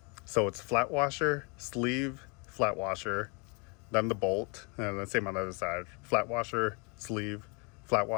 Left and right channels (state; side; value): quieter; right; 32.7 dB